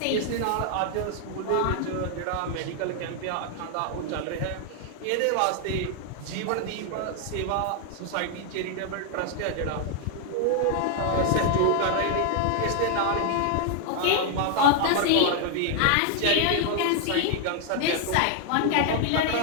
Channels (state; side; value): different; both; correlation 0.00